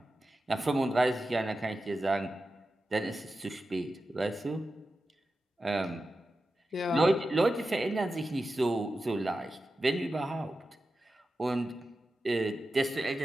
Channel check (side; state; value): both; normal; correlation 0.92